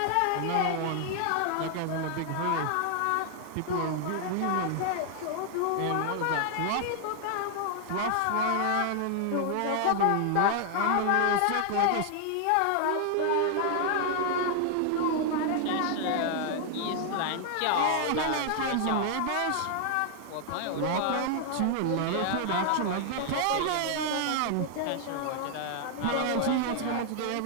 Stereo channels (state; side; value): different; both; correlation 0.00